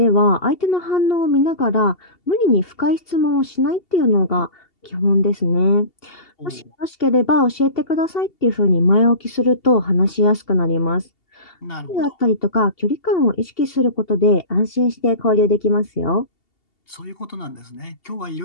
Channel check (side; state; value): right; late; 2.7 ms